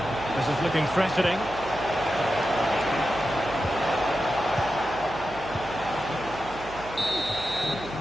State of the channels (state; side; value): noise; right; hum, 15 dB below the sound